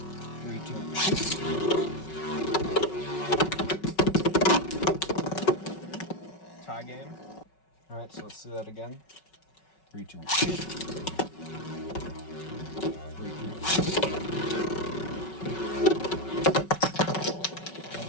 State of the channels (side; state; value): right; late; 5.3 ms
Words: 3, 2, 1, shoot. Tie game. Alright, so let's do that again. 3, 2, 1, shoot. 3, 2, 1, shoot.